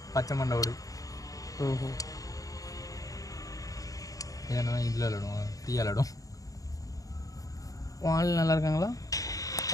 பச்சை மண்டோடு. ஓஹோ ஏன்னா இதில் விளாடுவோம் ஃப்ரீயாக விளாடும். ஆள் நல்லா இருக்காங்களா?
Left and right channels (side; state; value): right; late; 0.17 ms